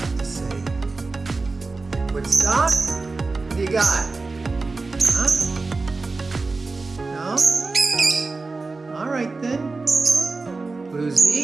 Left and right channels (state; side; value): quieter; left; 3.8 dB